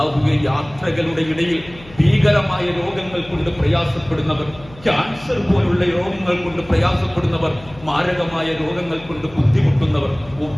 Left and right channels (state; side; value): noise; left; hum, 20 dB below the sound